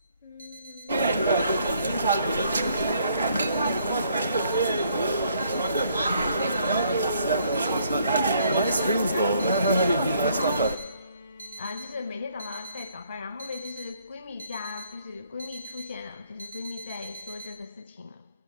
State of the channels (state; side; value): inverted; both; correlation -0.67